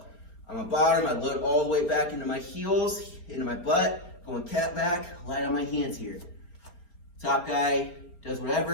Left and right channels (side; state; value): right; late; 4.4 ms